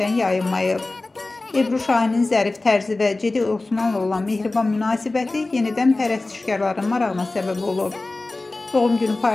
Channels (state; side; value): quieter; right; 3.1 dB